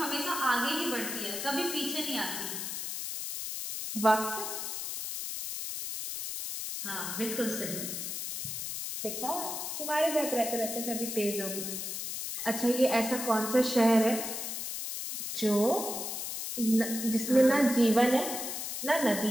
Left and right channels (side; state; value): left; noise; hiss, 5 dB below the sound